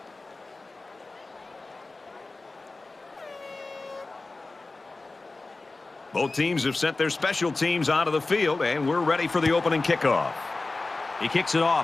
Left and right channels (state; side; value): quieter; right; 3.4 dB